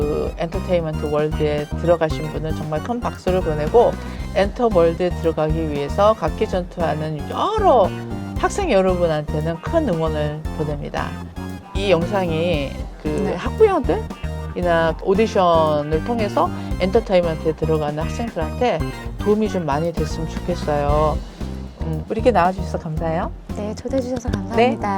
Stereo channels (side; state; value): both; identical; correlation 1.00